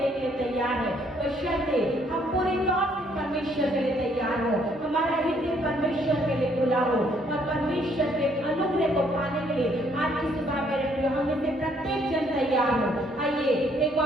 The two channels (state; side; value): normal; both; correlation 0.67